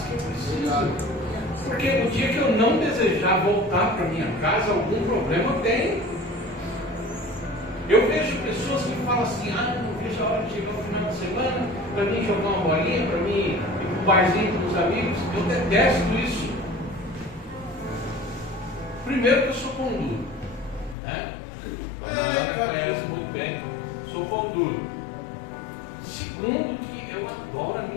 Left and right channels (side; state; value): right; drops out; at 21.0 s